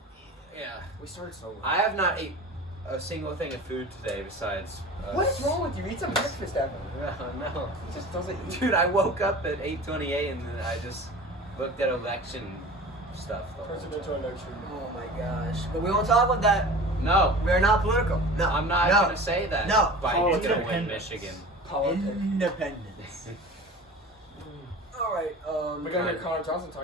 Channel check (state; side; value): normal; both; correlation 0.38